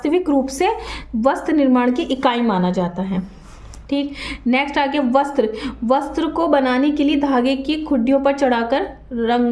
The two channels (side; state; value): both; identical; correlation 1.00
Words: रूप से वस्त्र निर्माण की इकाई माना जाता है। ठीक, नेक्स्ट आ गया वस्त्र। वस्त्र को बनाने के लिए धागे की खुड्डियों पर चढ़ाकर